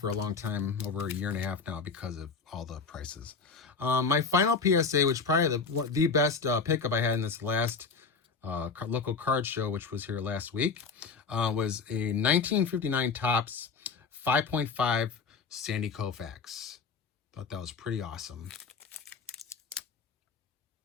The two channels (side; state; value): right; quieter; 5.0 dB